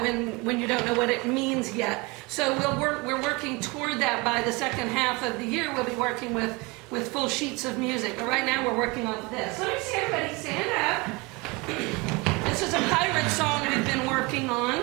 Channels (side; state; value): left; quieter; 26.0 dB